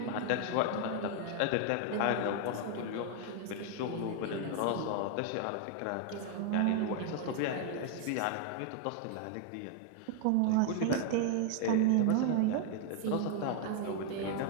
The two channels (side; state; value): both; different; correlation 0.00